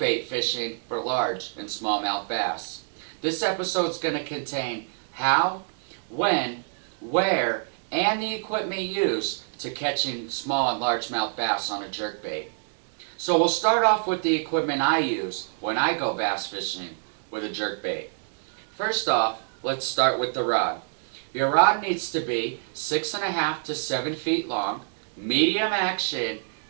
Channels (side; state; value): left; silent; digital silence